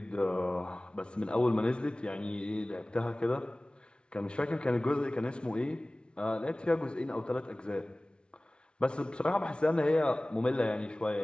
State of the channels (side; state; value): right; late; 0.057 ms